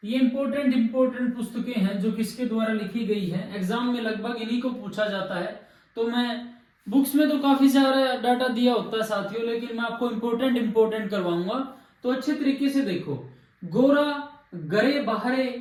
ये इंपोर्टेंट पुस्तकें हैं जो किसके द्वारा लिखी गई है। एग्जाम में लगभग इन्हीं को पूछा जाता है। तो मैं बुक्स में तो काफी सारा डाटा दिया होता है साथियों, लेकिन मैं आपको इंपोर्टेंट करवाऊंगा, तो अच्छे तरीके से देखो। गोरा गरे बाहरे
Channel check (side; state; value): both; identical; correlation 1.00